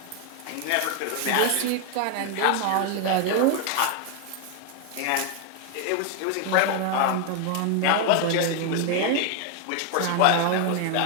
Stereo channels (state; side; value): different; both; correlation 0.01